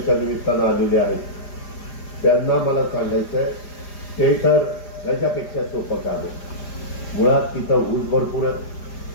निमित्तानं आलेले आहेत. त्यांना मला सांगायचंय, ते तर ह्याच्यापेक्षा सोपं काम आहे. मुळात तिथं ऊस भरपूर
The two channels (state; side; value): late; right; 4.9 ms